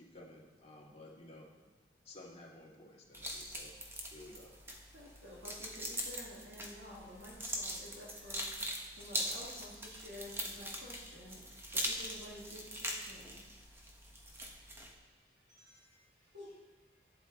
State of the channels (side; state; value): both; normal; correlation -0.04